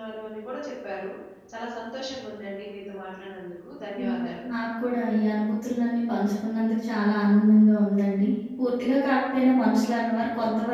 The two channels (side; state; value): both; identical; correlation 1.00